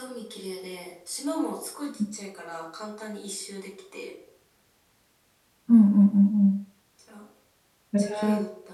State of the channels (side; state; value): both; identical; correlation 1.00